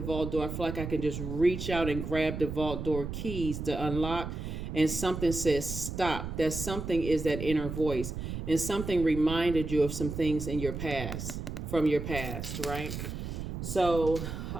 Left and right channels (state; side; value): noise; right; rumble, 6 dB below the sound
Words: vault door. I feel like I can just reach out and grab the vault door keys to unlock, and something says stop. That something is that inner voice, and something reminded you of some things in your past, from your past, right? So,